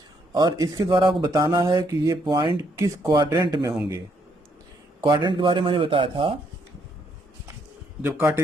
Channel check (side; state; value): both; normal; correlation 0.72